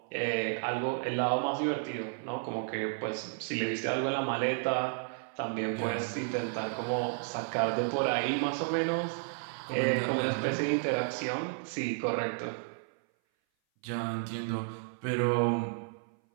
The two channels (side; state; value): left; silent; 56 dB below the other